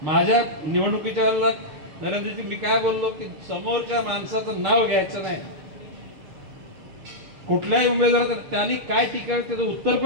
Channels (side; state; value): left; late; 7.0 ms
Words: माझ्या निवडणुकीच्या वेळेला नरेंद्रजी मी काय बोललो की समोरच्या माणसाचं नाव घ्यायचं नाही, कुठल्याही उमेदवार त्यांनी काय टीका त्याचं उत्तर